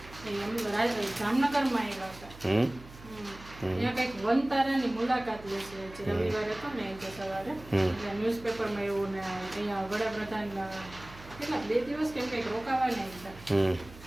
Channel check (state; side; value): noise; right; hum, 18 dB below the sound